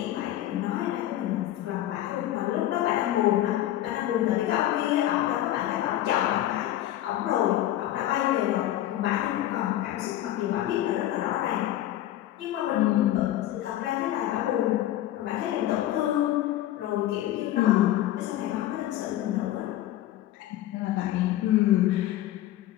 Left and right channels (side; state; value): right; quieter; 13.6 dB